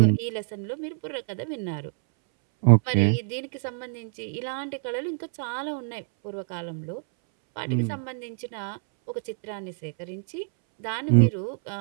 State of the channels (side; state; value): left; silent; 60 dB below the other